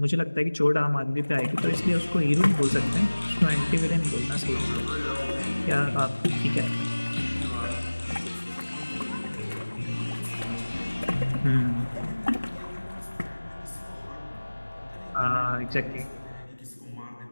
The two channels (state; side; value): inverted; both; correlation -1.00